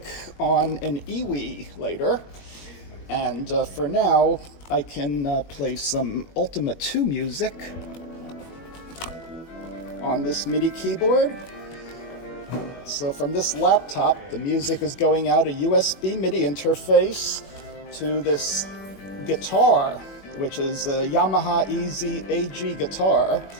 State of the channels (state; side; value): late; right; 21 ms